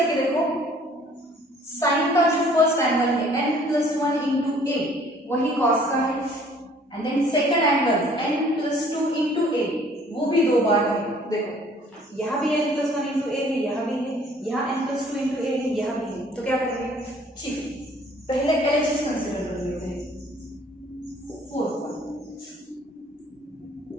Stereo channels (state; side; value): normal; both; correlation 0.56